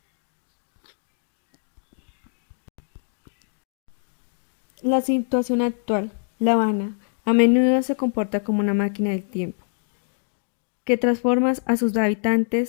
La situación actual, La Habana, a menudo se comporta como una máquina del tiempo, que transforma a sus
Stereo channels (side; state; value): right; silent; digital silence